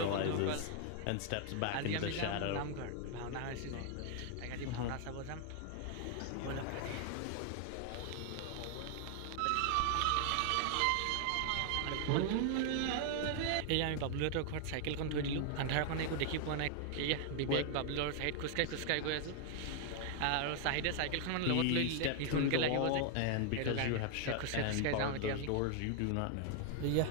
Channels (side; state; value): both; different; correlation 0.00